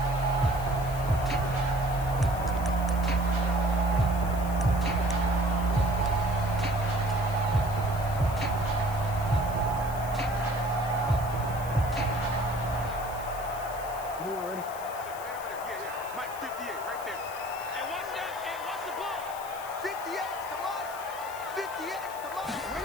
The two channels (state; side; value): noise; left; hiss, 16 dB below the sound